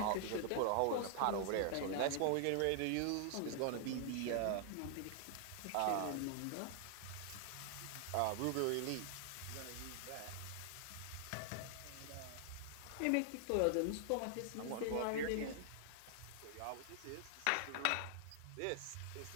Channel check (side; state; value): both; different; correlation 0.00